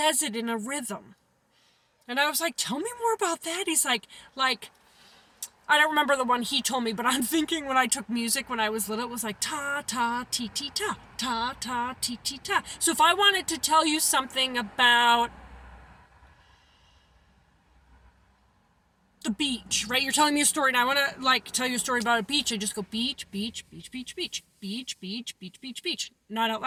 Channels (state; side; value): identical; both; correlation 1.00